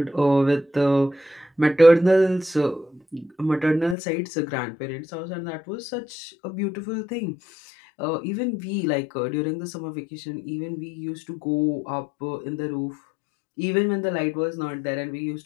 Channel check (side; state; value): right; drops out; at 4.0 s